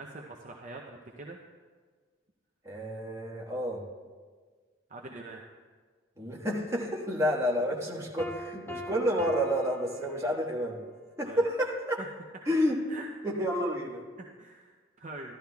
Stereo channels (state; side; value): normal; both; correlation 0.59